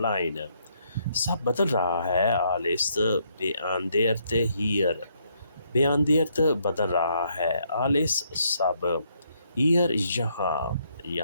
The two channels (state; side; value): inverted; both; correlation -0.72